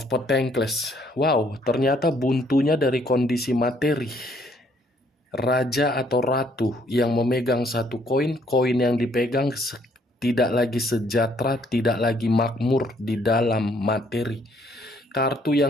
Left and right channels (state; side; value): normal; both; correlation 0.66